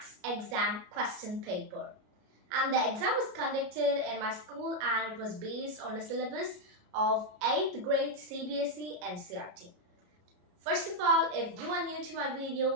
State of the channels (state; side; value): late; left; 33 ms